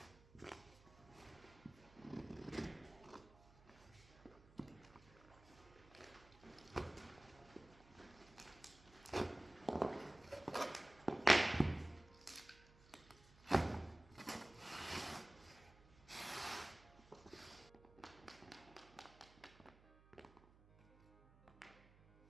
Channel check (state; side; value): noise; right; hum, 24 dB below the sound